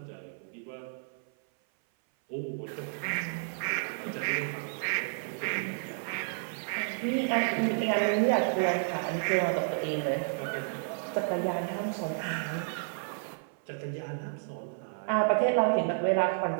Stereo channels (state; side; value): silent; left; 56 dB below the other